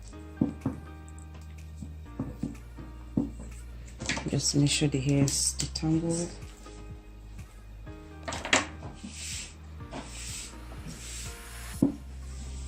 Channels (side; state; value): both; identical; correlation 1.00